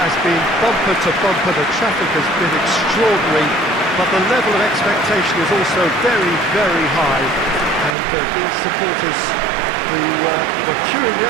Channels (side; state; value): left; drops out; at 7.9 s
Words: has been bumper to bumper, the traffic has been extraordinary, but the level of expectation is also very, very high. And these supporters who were queuing